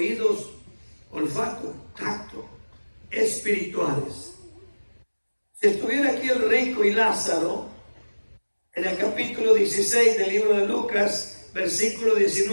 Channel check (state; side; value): inverted; both; correlation -1.00